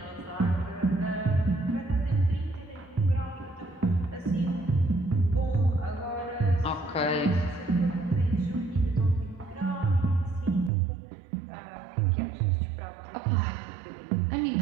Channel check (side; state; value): left; drops out; at 10.7 s